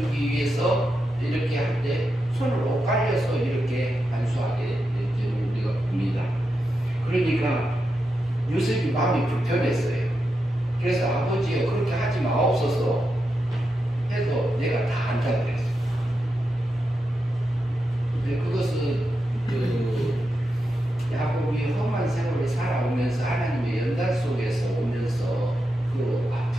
위해서 이렇게 할 때 손을 엇갈려서 이렇게 안수하게 되는 우리가 봅니다. 그러니까 요셉이 마음이 불편했어요. 그래서 아버지여 그렇게 하지 마옵소서 해도 내가 다 안다 그랬어요. 근데 그것은 야곱이 험한 세월을 살아오면서 하나님의 연단 속에서 오면서 그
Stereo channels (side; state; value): both; normal; correlation 0.87